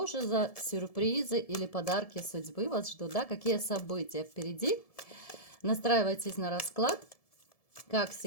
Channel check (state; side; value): late; right; 1.7 ms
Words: же за сюрпризы или подарки судьбы вас ждут, да, какие события впереди. Настраивайтесь на расклад. Как